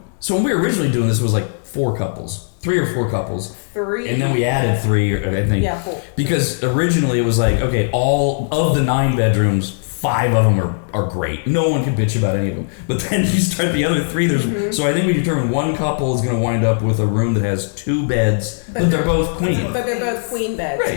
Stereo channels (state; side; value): silent; right; 67 dB below the other